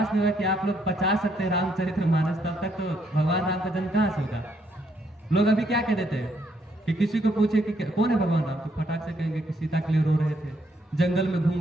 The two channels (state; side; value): normal; both; correlation 0.72